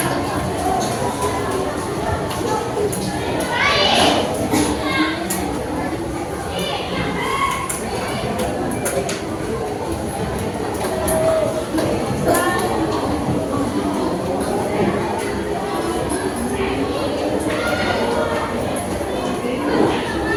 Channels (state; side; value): identical; both; correlation 1.00